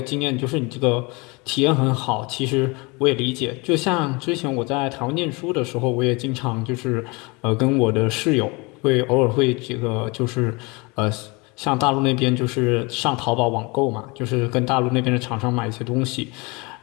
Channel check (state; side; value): quieter; right; 27.3 dB